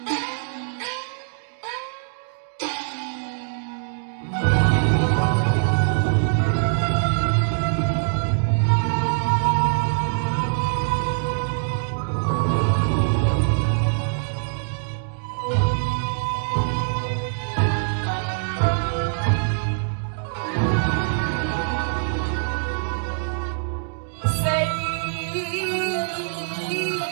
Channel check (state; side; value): silent; left; digital silence